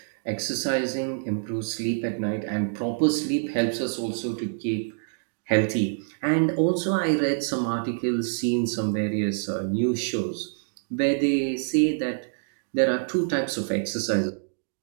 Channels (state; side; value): silent; left; digital silence